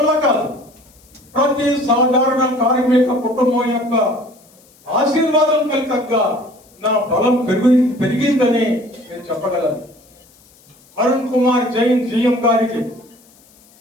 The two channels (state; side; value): noise; left; hiss, 29 dB below the sound